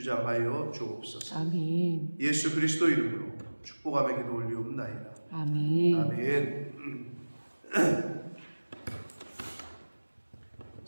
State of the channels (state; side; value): inverted; both; correlation -1.00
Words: 주옵소서. 아멘. 예수 그리스도 이름으로 축복하며 기도 올리옵나이다. 아멘. 아멘.